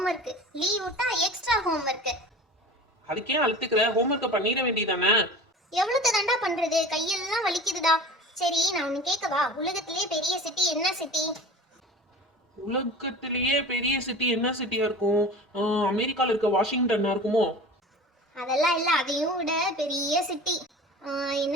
leave விட்டா எக்ஸ்ட்ரா ஹோம்வொர்க். அதுக்கே அழுத்துக்கிற, ஹோம்வொர்க்கை பண்ணிட வேண்டியதானே? எவ்வளவு தாண்டா பண்றது, கையெல்லாம் வலிக்குதுடா. சரி, நான் ஒன்னு கேட்கவா? உலகத்திலேயே பெரிய சிட்டி என்ன சிட்டி? உலகத்திலேயே பெரிய சிட்டி என்ன சிட்டியா இருக்கும்? அமெரிக்கால இருக்க வாஷிங்டன்னா இருக்குமோ? அதெல்லாம் இல்ல, அதையும் விட பெரிய சிட்டி.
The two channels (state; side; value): normal; both; correlation 0.38